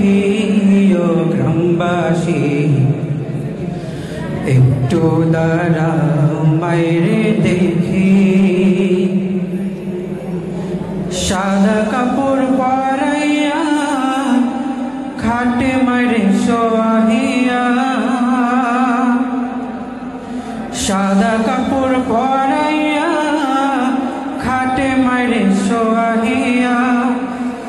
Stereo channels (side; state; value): both; identical; correlation 1.00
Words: ও গ্রামবাসী, একটু দাঁড়াও মাইরে দেখি, সাদা কাপড় পরাইয়া খাটে মাইরে সোয়াহিয়া, সাদা কাপড় পরাইয়া খাটে মাইরে সোয়াহিয়া,